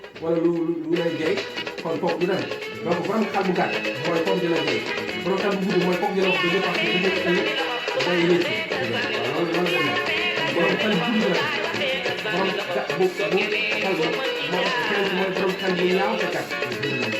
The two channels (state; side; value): identical; both; correlation 1.00